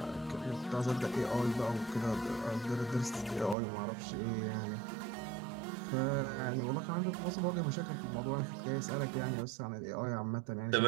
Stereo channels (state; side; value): drops out; left; at 3.6 s